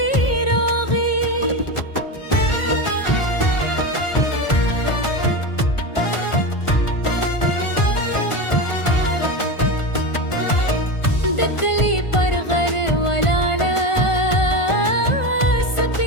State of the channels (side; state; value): right; late; 1.4 ms